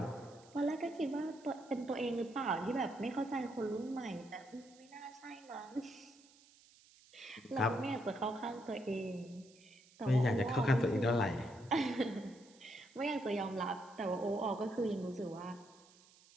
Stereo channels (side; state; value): right; noise; hiss, 26 dB below the sound